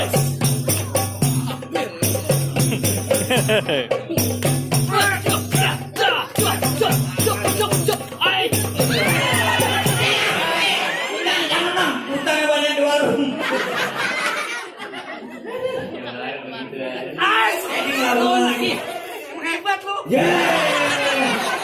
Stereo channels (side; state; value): both; identical; correlation 1.00